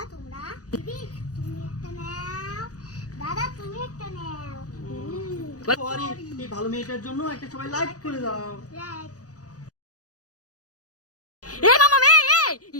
তোমরা, দিদি তুমি একটা নাও, দাদা তুমি একটা নাও। সরি, এই ভালো মেয়েটার জন্য একটা সবাই লাইক করে দাও। রাইট। এ মামা মে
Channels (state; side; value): late; right; 0.67 ms